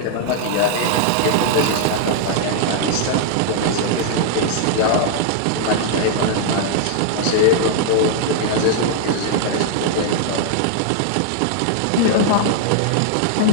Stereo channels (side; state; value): both; different; correlation -0.01